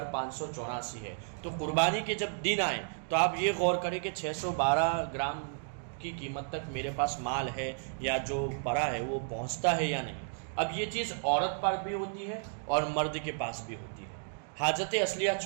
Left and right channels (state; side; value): silent; left; digital silence